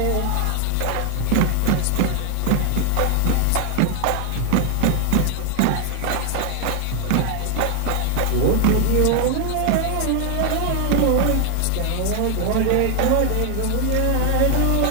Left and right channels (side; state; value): both; different; correlation 0.00